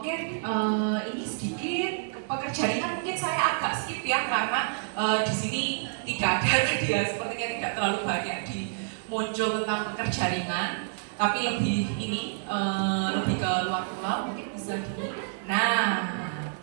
ini sedikit pekerja ringan mungkin saya agak skip ya karena di sini tidak ada dia sepertinya tidak terlalu banyak muncul tentang pekerja ringan, tapi lebih lebih ke luar pulau mungkin bisa di. Nah,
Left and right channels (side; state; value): left; silent; 59 dB below the other